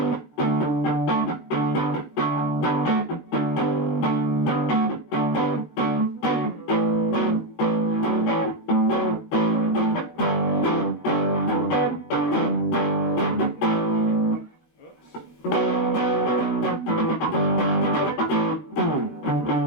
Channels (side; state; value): right; late; 13 ms